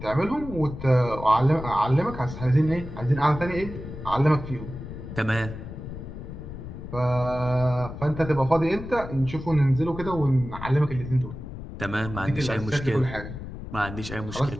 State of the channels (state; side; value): noise; left; rumble, 10 dB below the sound